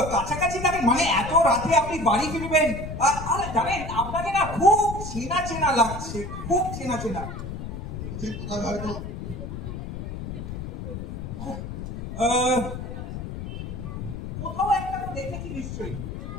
কাছাকাছি থাকেন? মানে এত রাতে আপনি বাড়ি ফিরবেন? আরে জানেন, আপনাকে না খুব চেনা চেনা লাগছে, খুব চেনা চেনা। কোথায় হয়তো কোথাও একটা দেখেছি নিশ্চয়ই।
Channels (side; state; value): left; noise; rumble, 7 dB below the sound